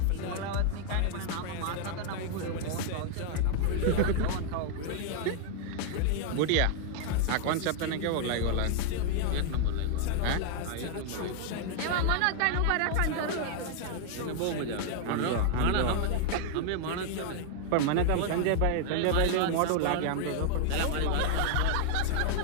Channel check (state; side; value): different; both; correlation 0.00